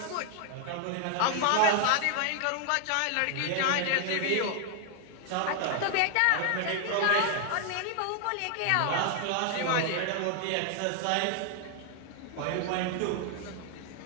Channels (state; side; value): different; both; correlation 0.00